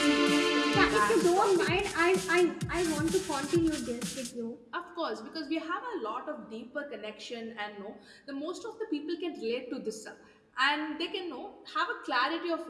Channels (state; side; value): identical; both; correlation 1.00